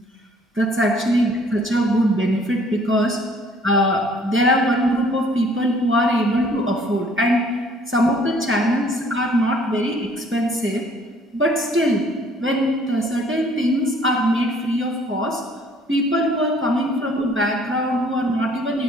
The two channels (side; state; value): both; normal; correlation 0.58